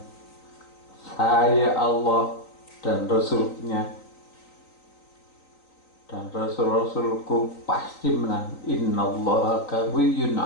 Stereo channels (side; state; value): right; late; 3.9 ms